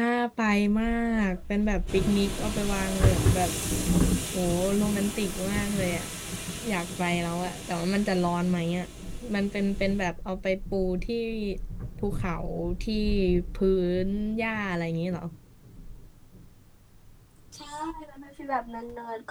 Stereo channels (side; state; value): both; identical; correlation 1.00